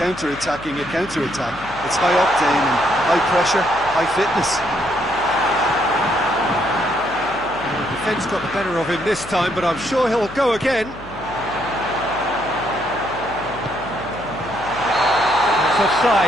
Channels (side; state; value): left; noise; hum, 18 dB below the sound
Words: a counter-attack. It's high octane and high pressure, high fitness. The defence got the better of him this time, but I'm sure he'll go again. It's